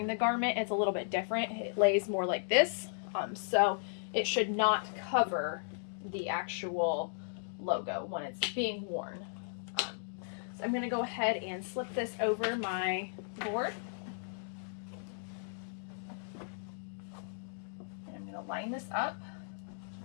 the garment, it's a little bit different. It lays more like this. So it should not cover the actual logo when it's being worn. So I'm going to go ahead and slip this over my board. And I'm going to line this up,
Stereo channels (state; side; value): silent; right; digital silence